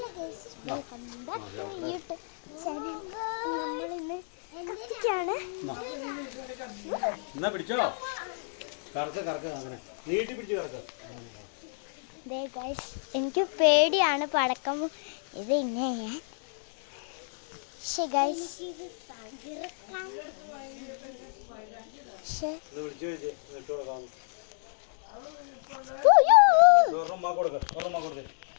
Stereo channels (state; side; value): silent; right; 58 dB below the other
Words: guys, welcome back to YouTube channel. നമ്മളിന്ന് കത്തിക്കാണ്. എനിക്ക് പേടിയാണ് പടക്കം. ഇത് ഇങ്ങനെ